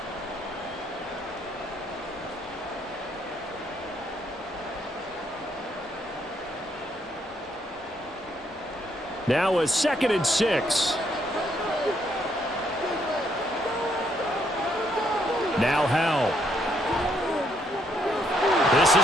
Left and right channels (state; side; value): normal; both; correlation 0.72